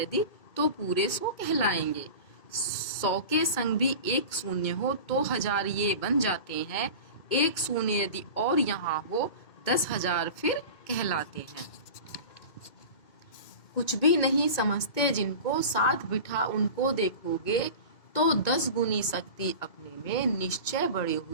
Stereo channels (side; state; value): right; late; 2.2 ms